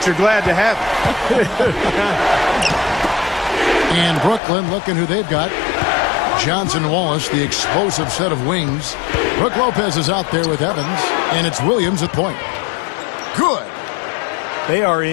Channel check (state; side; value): drops out; right; at 4.4 s